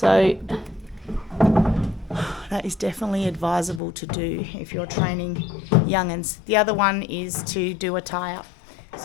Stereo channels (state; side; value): drops out; right; at 3.8 s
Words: that is definitely advisable to do if you're training young'uns. The other one is to do a tie-up.